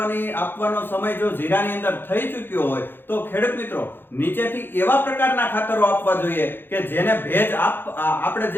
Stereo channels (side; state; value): right; late; 0.10 ms